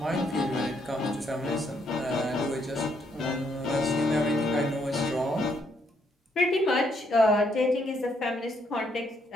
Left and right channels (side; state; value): both; normal; correlation 0.73